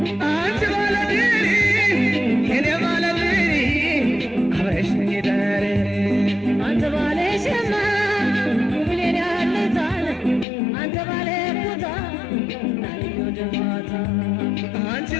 አንቺ ባለድሪ የኔ ባለድሪ አብረሽኝ ዳሬ አንተ ባለ ሸማ ውብሌን ያለታል አንተ ባለ ቦታ ናትኝ ወደ ማታ አንቺ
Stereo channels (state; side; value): drops out; right; at 10.5 s